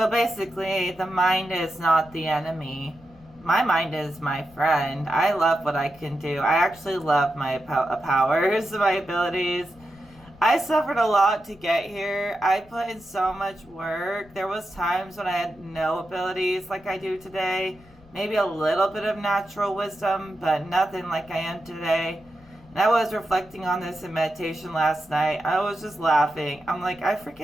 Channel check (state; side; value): noise; left; rumble, 25 dB below the sound